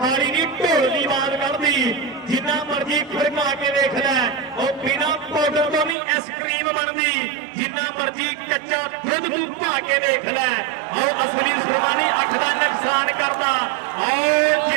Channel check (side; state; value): left; drops out; at 6.0 s